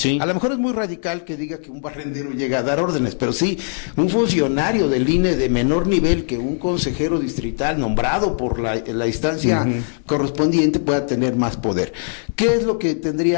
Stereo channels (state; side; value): silent; right; 66 dB below the other